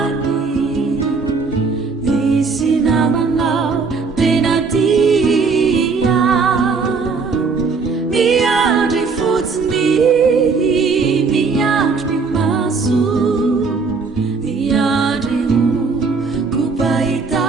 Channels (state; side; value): quieter; left; 4.7 dB